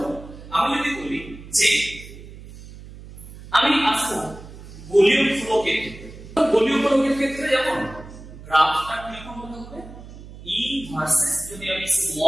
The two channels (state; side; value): noise; right; hum, 16 dB below the sound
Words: আমি যদি বলি যে আমি আসবো ভলিউম ফ্লো ক্ষেত্রে, ভলিউম ফ্লো ক্ষেত্রে যেমন গ্রাফটা কিরকম হতে হবে, E ভার্সেস যদি আমি